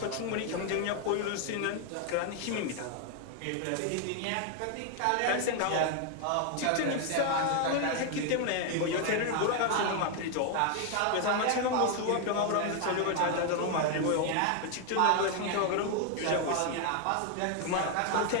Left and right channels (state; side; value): different; both; correlation 0.01